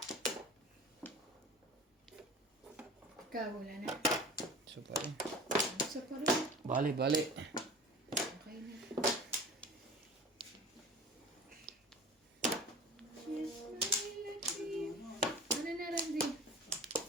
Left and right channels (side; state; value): both; normal; correlation 0.39